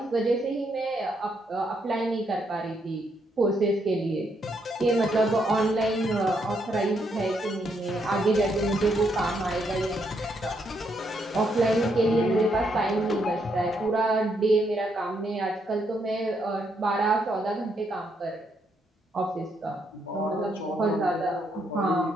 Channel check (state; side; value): normal; both; correlation 0.76